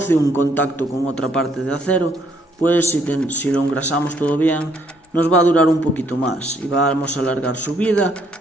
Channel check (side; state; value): both; normal; correlation 0.68